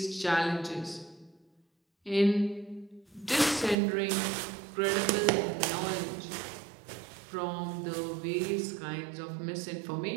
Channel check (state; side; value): drops out; left; at 3.8 s